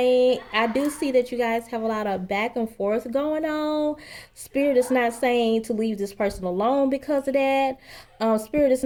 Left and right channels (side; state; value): both; identical; correlation 1.00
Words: I do see that you guys have a lot of back and forth going on. Spirit is not saying to leave this person alone because of that. Spirit is